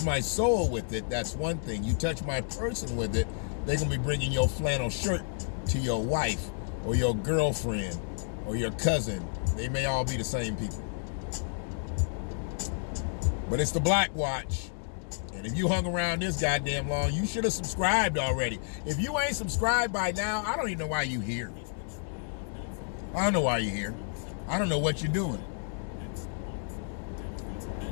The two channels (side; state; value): right; silent; digital silence